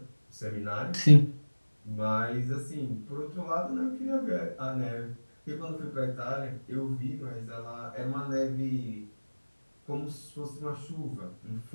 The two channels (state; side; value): inverted; both; correlation -1.00